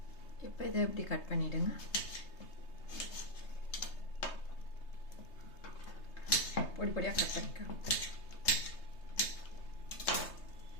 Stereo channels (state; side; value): late; right; 3.2 ms